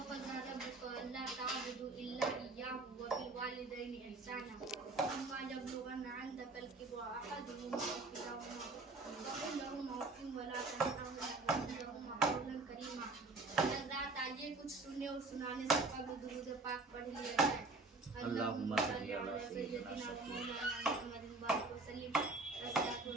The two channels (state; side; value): quieter; left; 3.5 dB